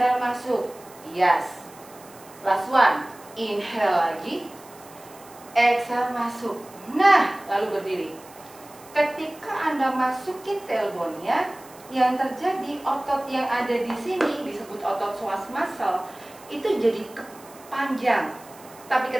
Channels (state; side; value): noise; right; hiss, 22 dB below the sound